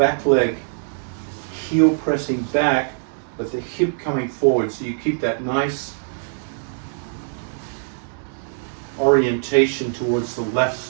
leg, heel pressing back, but the hip coming forward. So you keep that nice orientation towards the left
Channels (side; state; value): left; silent; digital silence